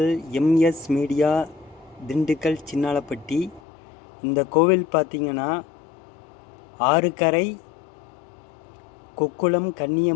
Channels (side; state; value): right; drops out; at 3.6 s